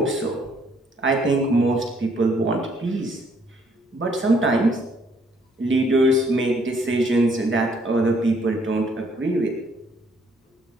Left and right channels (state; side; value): normal; both; correlation 0.66